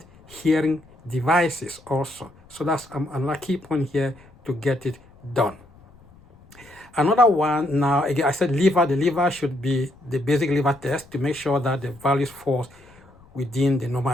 hearing devices also. So that's another key point here to get it done. Another one, now again, I said liver. The liver should be the basic liver test to make sure that the values falls within the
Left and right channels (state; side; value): noise; left; rumble, 26 dB below the sound